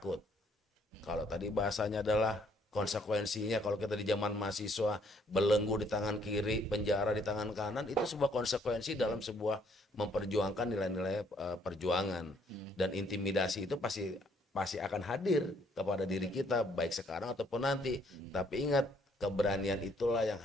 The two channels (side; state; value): both; normal; correlation 0.66